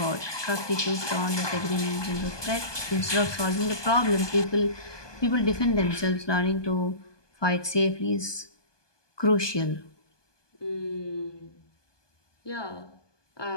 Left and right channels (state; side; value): late; right; 1.2 ms